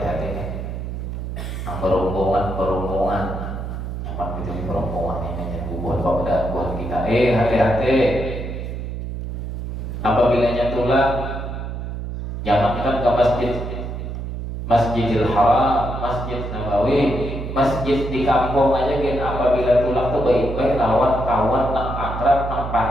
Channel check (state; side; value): noise; right; hum, 6 dB below the sound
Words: nih. Berombongan nyaman gitu nih berombongan ini buat buat kita. Hati-hati. Apabila tulang jangankan ke Masjidil Haram, Masjid Nabawi, masjid di kampung aja kan apabila tulang tuh baik-baik lawan kawan nang akrab nang